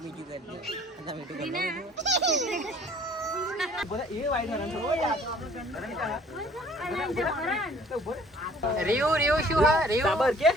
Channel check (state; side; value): normal; both; correlation 0.55